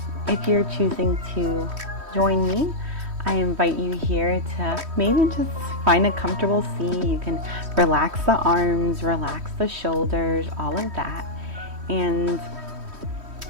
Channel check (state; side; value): late; left; 3.1 ms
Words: if you're choosing to join me, I invite you here to maybe just find a comfortable seat. You can relax the arms, relax the shoulders, all of that. And